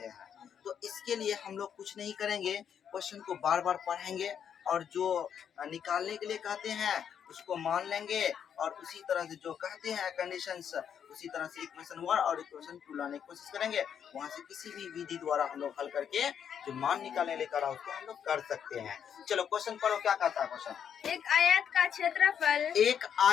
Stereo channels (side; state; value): right; quieter; 8.3 dB